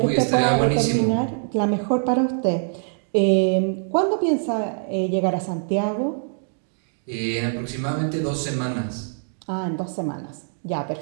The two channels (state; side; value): silent; left; digital silence